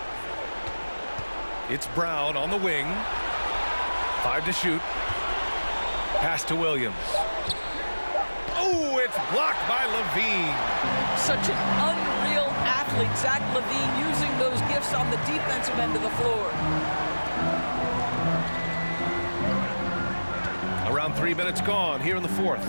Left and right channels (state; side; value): inverted; both; correlation -1.00